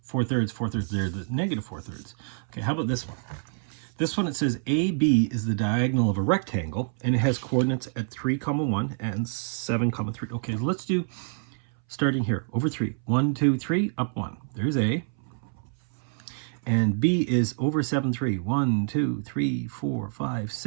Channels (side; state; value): left; silent; 60 dB below the other